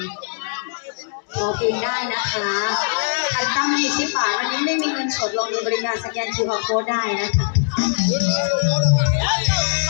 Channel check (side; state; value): right; silent; digital silence